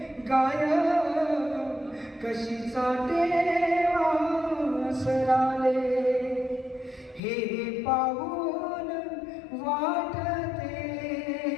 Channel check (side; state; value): right; drops out; at 7.2 s